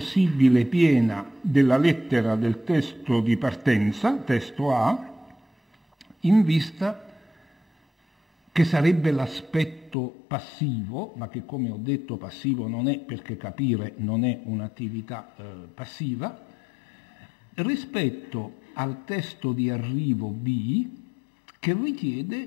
piena della lettera del testo di partenza, testo A, in vista che sarebbe l'aspetto passivo, ma che come ho detto passivo non è, perché capire non è un'attività passiva, rispetto al testo di arrivo B, che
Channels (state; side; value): drops out; right; at 10.0 s